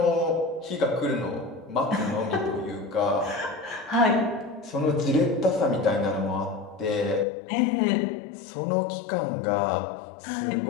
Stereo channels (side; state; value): right; drops out; at 7.2 s